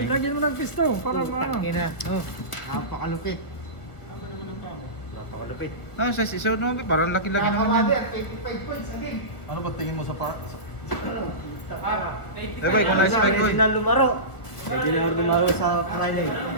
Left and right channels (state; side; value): late; right; 1.7 ms